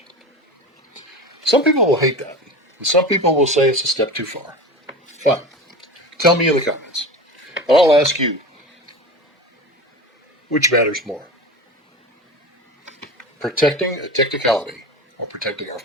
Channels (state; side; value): normal; both; correlation 0.31